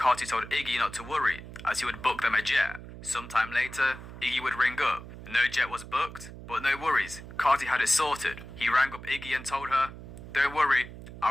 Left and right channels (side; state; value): right; noise; hum, 14 dB below the sound